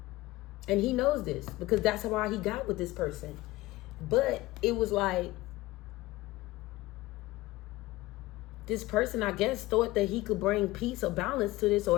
and he knows this, because that's why he got with this person. But it was like, this person, I guess, thought that he could bring peace or balance to this,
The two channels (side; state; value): right; quieter; 18.8 dB